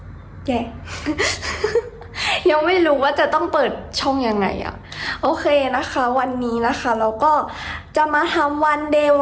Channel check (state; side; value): identical; both; correlation 1.00